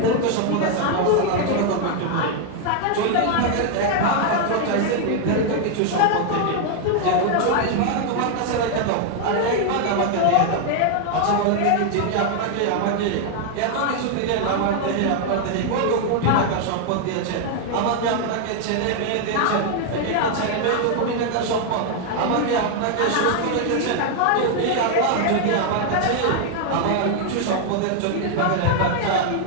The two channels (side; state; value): both; different; correlation 0.00